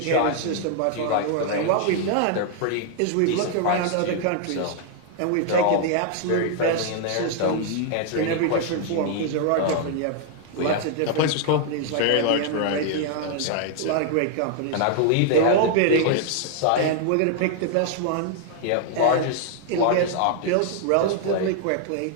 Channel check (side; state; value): both; different; correlation 0.00